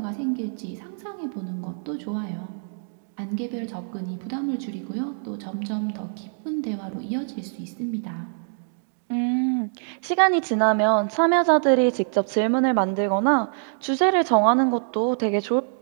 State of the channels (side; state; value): left; silent; digital silence